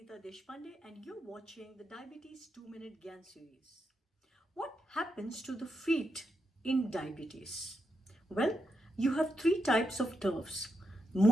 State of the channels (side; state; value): both; normal; correlation 0.84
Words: Deshpande and you're watching the Diabetes 2-Minute GYAAN series. What happens to the feet in diabetes? Well, you have three types of nerves: